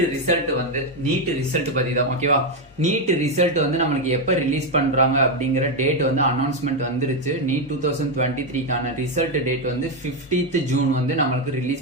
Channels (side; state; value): both; normal; correlation 0.05